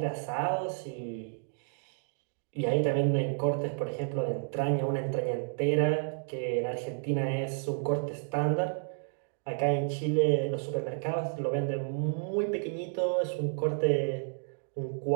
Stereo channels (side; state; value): left; silent; digital silence